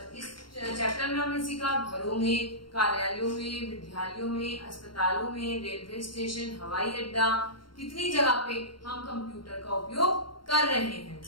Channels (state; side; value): late; right; 0.72 ms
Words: इस चैप्टर में हमने सीखा घरों में, कार्यालयों में, विद्यालयों में, अस्पतालों में, रेलवे स्टेशन, हवाई अड्डा, कितनी जगह पे हम कंप्यूटर का उपयोग कर रहे हैं।